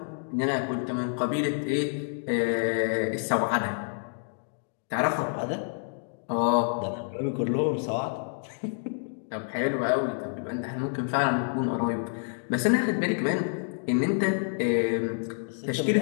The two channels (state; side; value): silent; right; digital silence